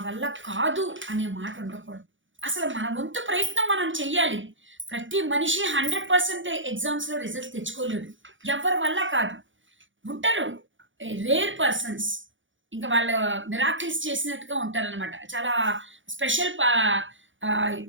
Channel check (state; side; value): late; left; 0.56 ms